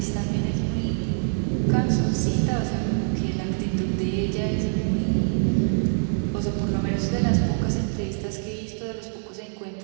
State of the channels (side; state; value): left; silent; 62 dB below the other